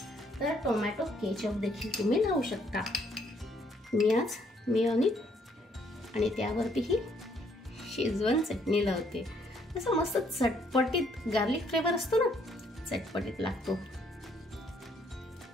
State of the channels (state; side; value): normal; both; correlation 0.68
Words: तर टोमॅटो केचप देखील तुम्ही लावू शकता. मी आज मेयोनीज आणि त्यावरती ही शेजवान चटणी लावते. असं मस्त चटपटीत गार्लिक फ्लेवर असतो ना, चटपटीत लागतो.